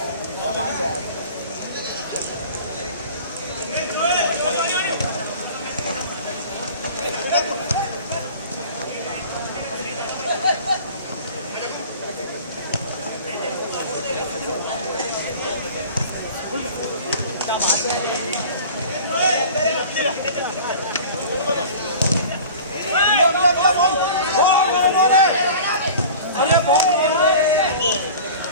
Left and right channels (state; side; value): inverted; both; correlation -0.41